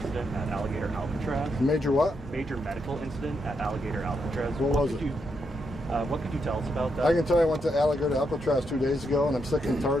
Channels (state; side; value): normal; both; correlation 0.81